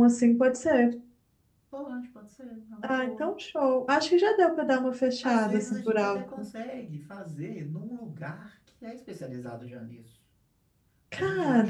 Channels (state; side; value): identical; both; correlation 1.00